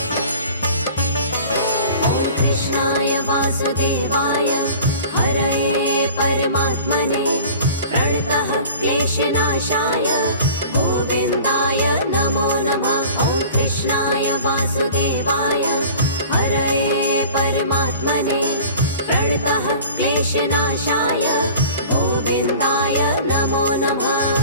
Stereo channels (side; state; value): both; inverted; correlation -0.43